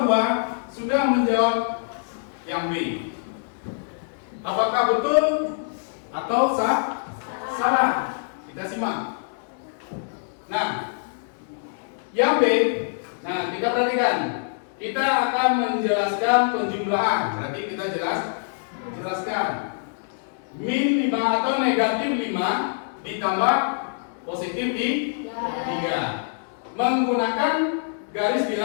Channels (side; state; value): right; silent; digital silence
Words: 2 sudah menjawab yang B. Apakah betul atau salah? Kita simak. Nah, yang B, nah kita perhatikan. Kita akan menjelaskan penjumlahan. Berarti kita jelaskan. Min 5 atau negatif 5 ditambah positif 3 menggunakan garis